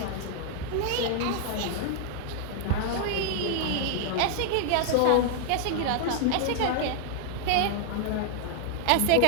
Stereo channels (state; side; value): different; both; correlation 0.00